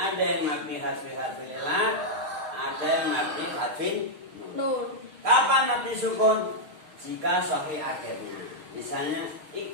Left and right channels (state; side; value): late; left; 6.4 ms